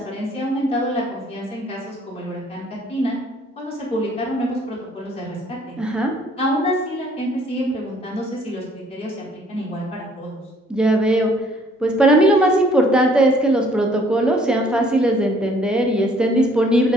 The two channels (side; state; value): both; normal; correlation 0.60